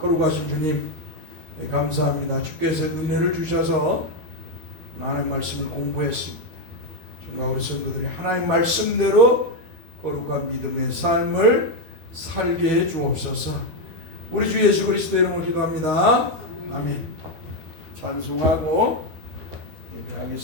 주님 감사합니다. 주께서 은혜를 주셔서 하나님 말씀을 공부했습니다. 정말 우리 성도들이 하나님 말씀대로 거룩한 믿음의 삶을 살게 해 주옵소서. 우리 주 예수 그리스도 이름으로 기도합니다. 아멘. 찬송하고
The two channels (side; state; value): left; late; 12 ms